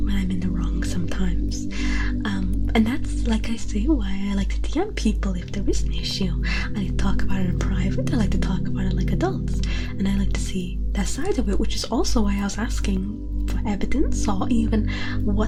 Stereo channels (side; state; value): both; identical; correlation 1.00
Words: I'm in the wrong sometimes, and that's, like I say, why I like to DM people if there is an issue. I like to talk about it in private, I like to talk about it like adults, and I like to see their side of it, which is also why I was asking for evidence, or even